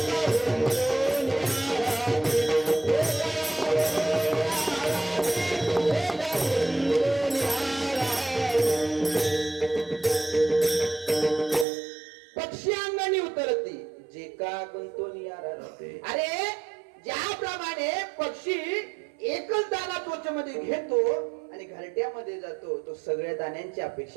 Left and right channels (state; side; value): drops out; left; at 11.7 s